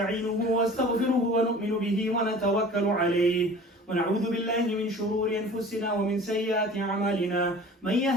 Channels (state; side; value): normal; both; correlation 0.43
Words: واستغفره ونؤمن به ونتوكل عليه ونعوذ بالله من شرور أنفسنا ومن سيئات أعمالنا من